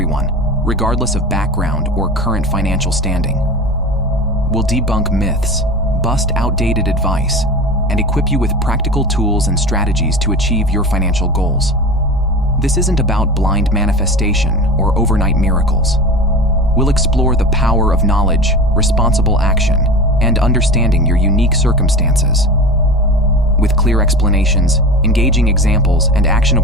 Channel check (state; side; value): normal; both; correlation 0.31